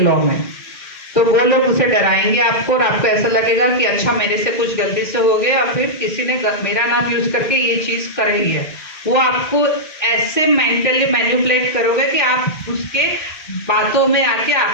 में। तो वो लोग उसे डराएंगे आपको और आपको ऐसा लगेगा कि अच्छा मेरे से कुछ गलती से हो गया और फिर किसी ने मेरा नाम यूज करके ये चीज कर रही है। वो आपको ऐसे मेंटली मैनिपुलेट करोगे कि आप उसके बातों में आके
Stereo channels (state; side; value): late; right; 1.5 ms